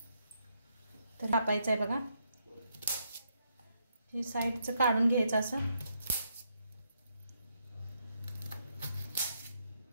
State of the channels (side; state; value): both; inverted; correlation -0.77